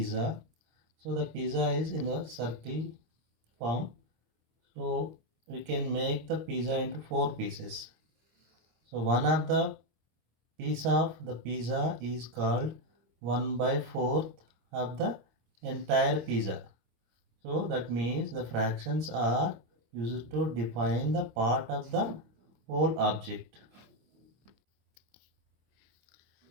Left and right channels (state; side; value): late; left; 26 ms